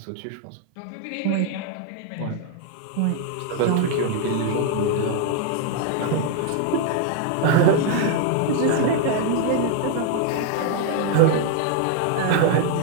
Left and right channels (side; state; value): both; different; correlation 0.00